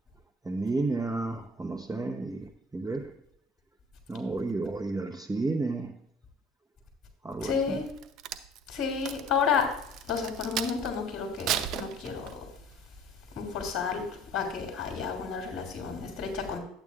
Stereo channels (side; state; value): both; normal; correlation 0.50